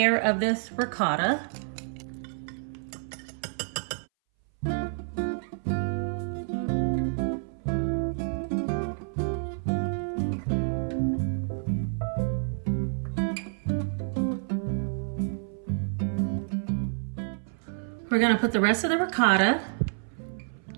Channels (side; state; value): left; silent; 59 dB below the other